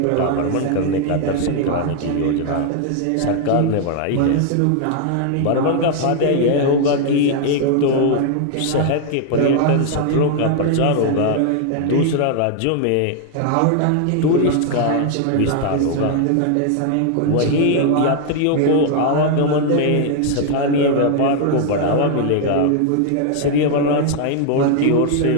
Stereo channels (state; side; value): different; both; correlation 0.00